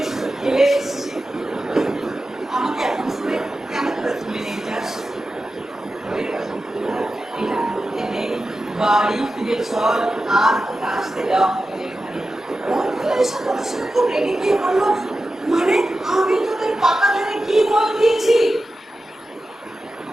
খেলে এসেছি, আমাকে এখন শুনে কেন করে তুলে নিয়ে যাস? বাড়ি ফিরে চল, আর আসতে দেওয়া হবে এখানে। খুব রেগে গিয়ে বললো মানে আমি তোদের পাকা ধারে কি বল দিয়েছি?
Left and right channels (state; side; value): normal; both; correlation 0.92